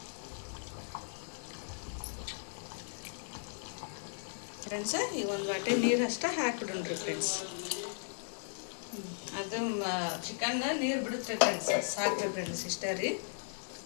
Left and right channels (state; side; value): silent; right; digital silence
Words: ಈಗ ಒಂದು ವಾಟಿ ನೀರು ಅಷ್ಟೇ ಹಾಕ್ಬಿಡೋಣ್ರಿ ಫ್ರೆಂಡ್ಸ್. ಅದು ಚಿಕನ್ ನೀರು ಬಿಡುತ್ತೆ ಫ್ರೆಂಡ್ಸ್, ಸಾಕ್ರಿ ಫ್ರೆಂಡ್ಸ್, ಇಷ್ಟೇ ರೀ.